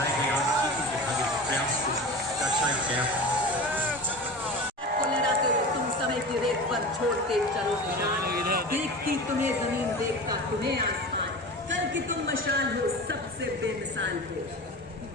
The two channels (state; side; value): normal; both; correlation 0.32